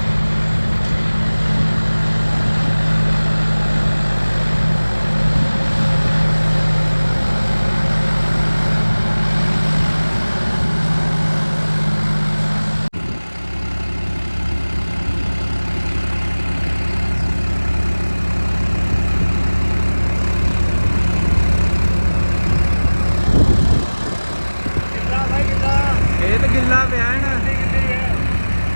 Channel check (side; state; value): both; inverted; correlation -1.00